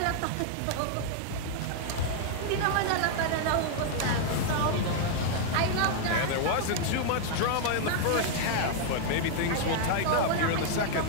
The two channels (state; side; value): different; both; correlation 0.00